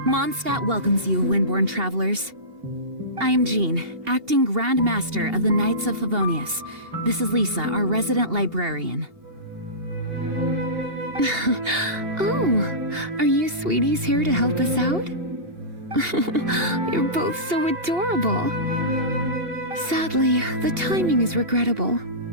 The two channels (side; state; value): left; late; 2.8 ms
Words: Mondstadt welcomes you, Windborn travelers. I am Jean, acting Grand Master of the Knights of Favonius. This is Lisa, our resident librarian. Oh, are you sweeties here to help us out? You're both so adorable. Sadly, the timing is regrettable.